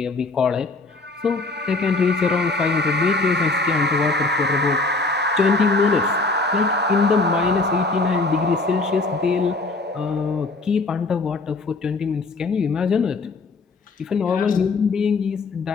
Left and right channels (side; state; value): right; quieter; 3.5 dB